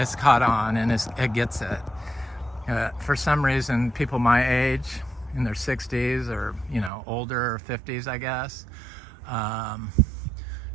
caught on and it gets it. For some reason, people my age, in their 60s or older, or 50s, I guess,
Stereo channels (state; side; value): drops out; left; at 6.9 s